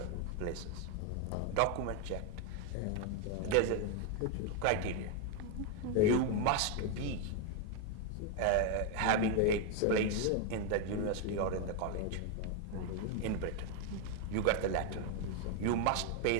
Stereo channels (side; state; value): both; different; correlation 0.01